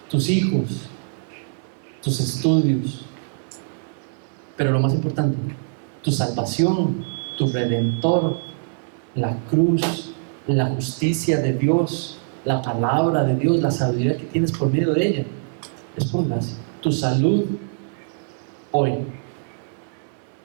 tus hijos, tus estudios, pero lo más importante, tu salvación, tu redentor, la cruz, la justicia de Dios, la palabra de Dios, la sabiduría que tienes por medio de ella, es por gracia. Tu salud hoy,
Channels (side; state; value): left; silent; 61 dB below the other